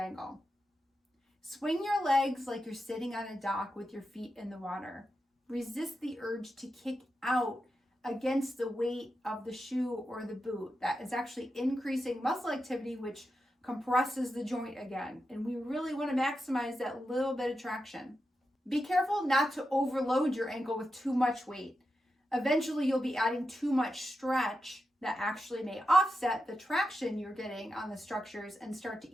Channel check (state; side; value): normal; both; correlation 0.89